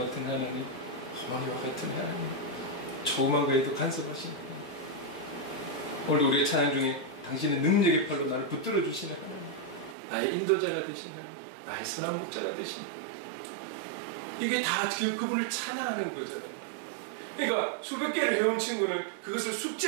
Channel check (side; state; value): left; drops out; at 10.0 s